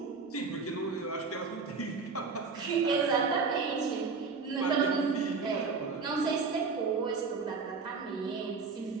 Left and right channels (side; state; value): left; quieter; 4.7 dB